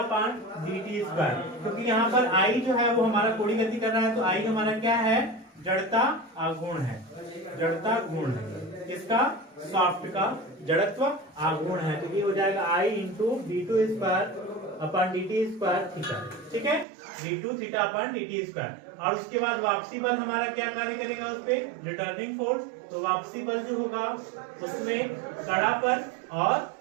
dt square, क्योंकि यहाँ पर I जो है वो हमारा कोणीय गति कर रहा है, तो I हमारा क्या है, जड़ता आघूर्ण है, जड़ता गुण है, किसका, शाफ्ट का जड़त्व आघूर्ण है, तो ये हो जाएगा I into d2 square upon dt square theta. ठीक है, d2 theta upon dt square, और उसके बाद वापसी बल हमारा क्या कार्य करेगा उस पे, रिटर्निंग फोर्स, तो वापसी बल जो होगा उसमें कड़ापन और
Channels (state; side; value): drops out; left; at 16.9 s